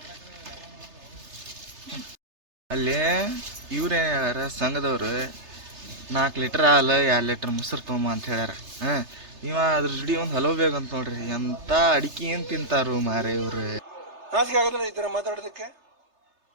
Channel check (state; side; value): late; left; 3.3 ms